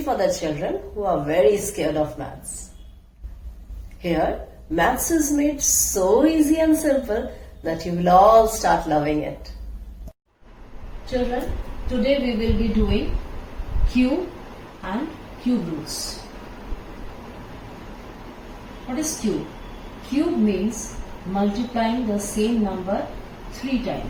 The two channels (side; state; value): both; identical; correlation 1.00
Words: the children who are very scared of maths. Here, maths is made so easy and simple that you will all start loving it. Children, today we will be doing cube and cube roots. What is cube? Cube means multiplying the same number 3